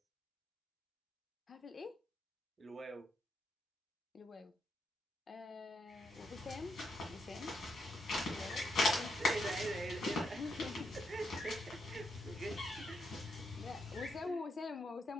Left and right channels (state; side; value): normal; both; correlation 0.81